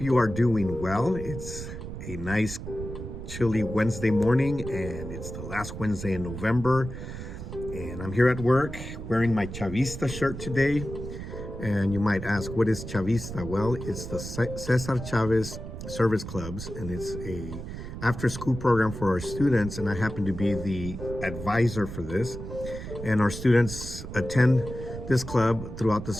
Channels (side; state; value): right; noise; rumble, 9 dB below the sound